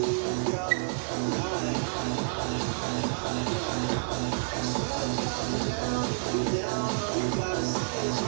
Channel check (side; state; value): left; silent; digital silence